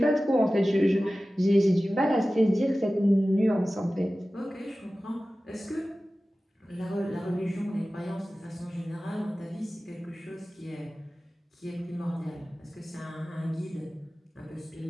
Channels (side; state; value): both; normal; correlation 0.96